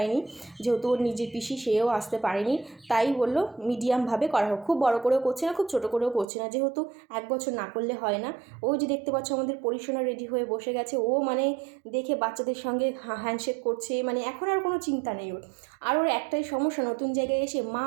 যেহেতু ওর নিজের পিসি সেও আসতে পারেনি, তাই বললো মিডিয়ামভাবে করা হোক, খুব বড় করেও করছে না, খুব ছোটো করেও করছে না, যেহেতু 1 বছর না করলে হয় না। ওই যে দেখতে পাচ্ছ আমাদের পরিসোনা রেডি হয়ে বসে গেছে, ও মানে দেখে বাচ্চাদের সঙ্গে হ্যান্ডশেক করছে, মানে এখন আর কোনো চিন্তা নেই ওর। আর ওর একটাই সমস্যা, নতুন জায়গায় এসে মা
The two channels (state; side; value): drops out; left; at 6.2 s